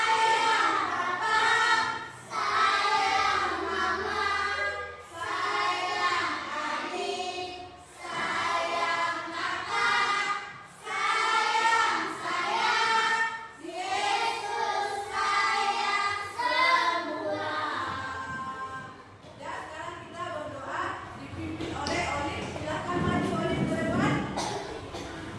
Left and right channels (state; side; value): identical; both; correlation 1.00